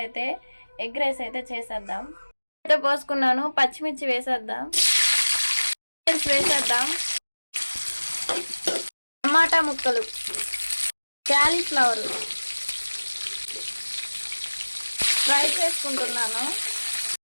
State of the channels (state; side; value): inverted; both; correlation -1.00